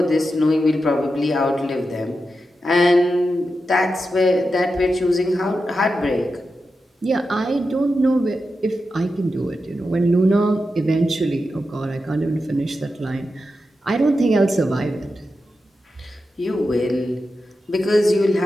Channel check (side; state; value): both; normal; correlation 0.89